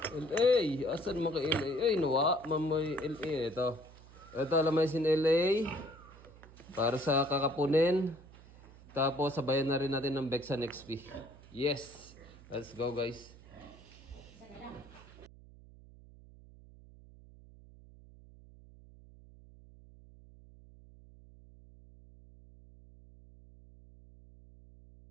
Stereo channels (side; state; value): right; noise; hum, 21 dB below the sound